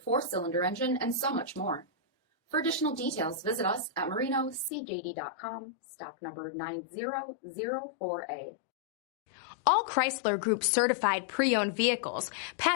4-cylinder engine, and so much more. For additional details, visit us at marinocjd.com, stock number 9004A. All Chrysler Group certified pre-owned vehicles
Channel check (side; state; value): right; drops out; at 4.7 s